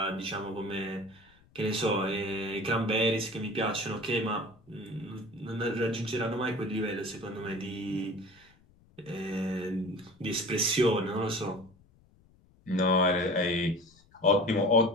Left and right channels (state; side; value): noise; left; rumble, 30 dB below the sound